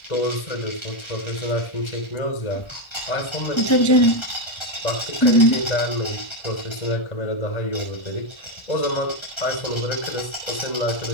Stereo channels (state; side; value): late; right; 1.4 ms